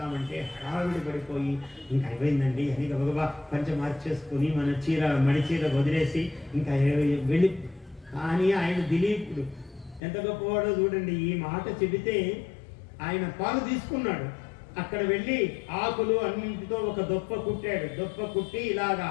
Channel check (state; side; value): drops out; right; at 10.0 s